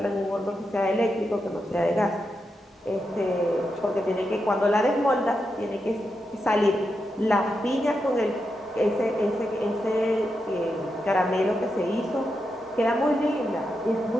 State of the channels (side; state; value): both; normal; correlation 0.86